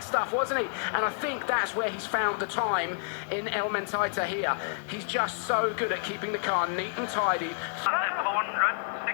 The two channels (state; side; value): silent; right; digital silence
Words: stuff, wasn't he? And I think that's where he's found the time in El Mentaita here. He's just so good at keeping the car neat and tidy.